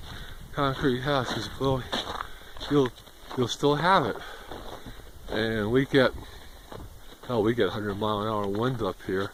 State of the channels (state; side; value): identical; both; correlation 1.00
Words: concrete house, because well, you'll still have it. And we get 100-mile-an-hour wind up here.